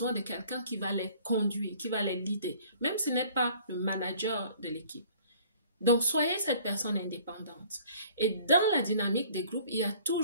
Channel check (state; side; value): inverted; both; correlation -0.54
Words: de quelqu'un qui va les conduire, qui va les leader, même si ce n'est pas le manager de l'équipe. Donc, soyez cette personne indépendante. Et dans la dynamique des groupes, il y a